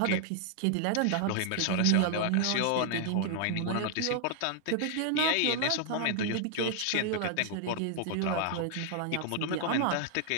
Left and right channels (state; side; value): different; both; correlation 0.00